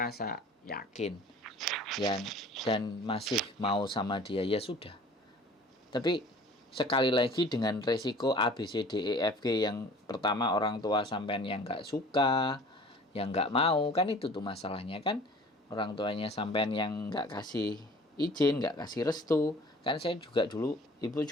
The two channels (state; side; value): normal; both; correlation 0.47